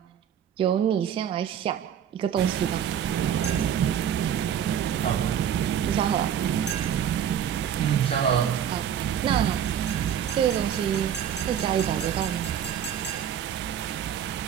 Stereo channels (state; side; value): quieter; left; 9.1 dB